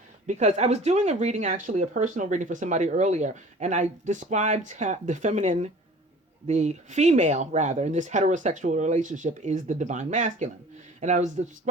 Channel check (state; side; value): normal; both; correlation 0.46